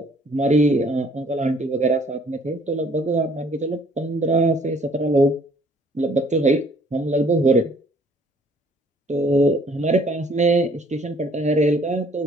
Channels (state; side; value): normal; both; correlation 0.59